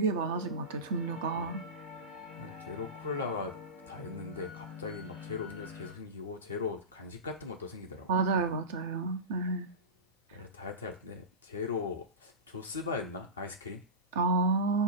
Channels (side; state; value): both; normal; correlation -0.19